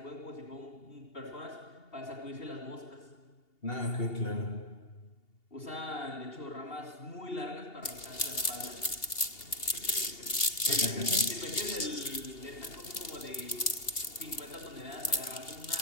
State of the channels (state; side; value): late; right; 2.8 ms